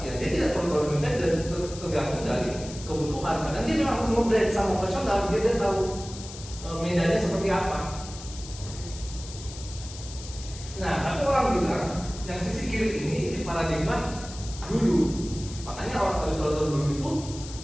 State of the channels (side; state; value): left; noise; hiss, 14 dB below the sound